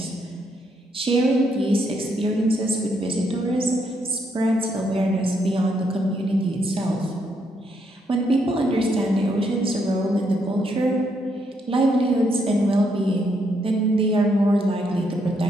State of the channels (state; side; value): normal; both; correlation 0.76